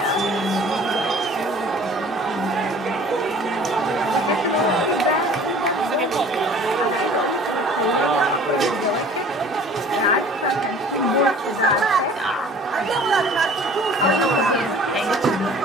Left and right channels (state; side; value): normal; both; correlation 0.48